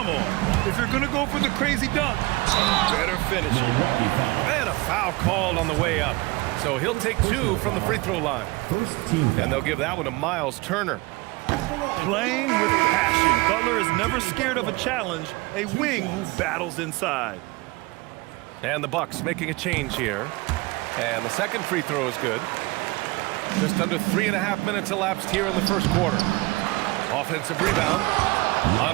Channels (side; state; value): left; quieter; 23.3 dB